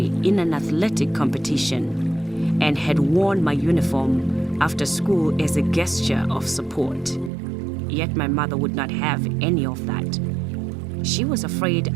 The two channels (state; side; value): drops out; left; at 7.3 s